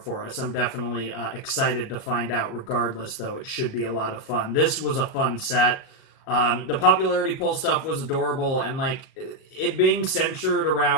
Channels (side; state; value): right; late; 38 ms